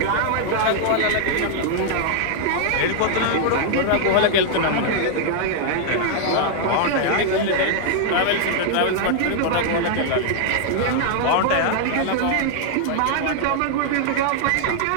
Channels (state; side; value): different; both; correlation -0.01